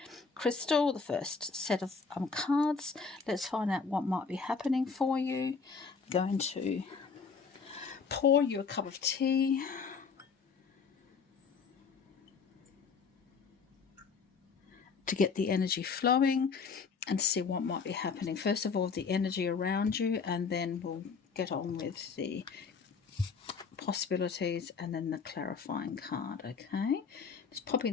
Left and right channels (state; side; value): quieter; right; 5.3 dB